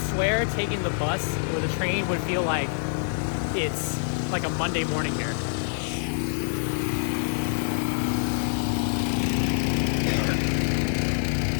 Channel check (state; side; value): silent; right; 61 dB below the other